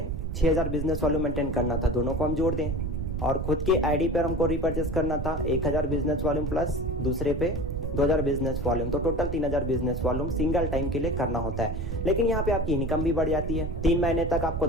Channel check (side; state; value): right; noise; rumble, 3 dB below the sound